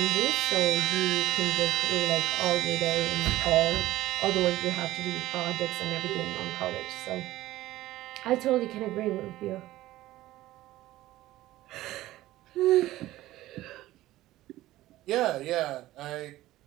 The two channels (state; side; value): quieter; left; 15.8 dB